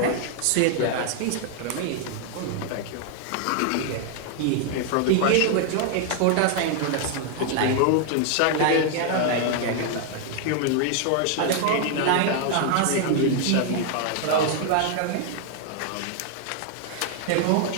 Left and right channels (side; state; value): both; different; correlation 0.00